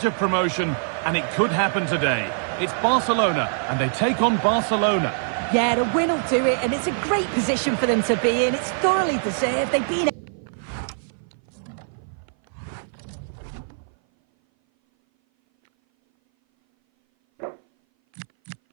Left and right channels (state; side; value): silent; left; 58 dB below the other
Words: of promotion, and it could happen today. It's Barcelona, and they take on Barcelona. Yeah, the win will do it, and it's a great position for them to be in. It's thoroughly deserved. They've been...